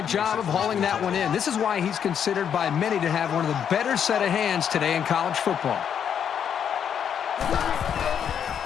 job of hauling that one in. This is why he's considered by many to have one of the better set of hands today in college football.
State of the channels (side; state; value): right; quieter; 8.3 dB